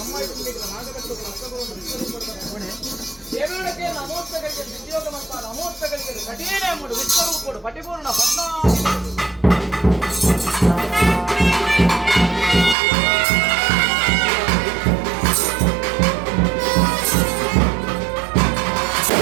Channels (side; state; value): left; drops out; at 12.8 s